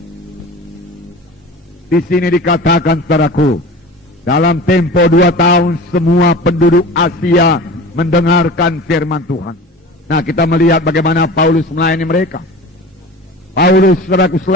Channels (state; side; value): normal; both; correlation 0.36